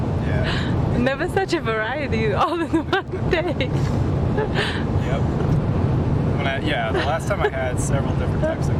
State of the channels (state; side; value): identical; both; correlation 1.00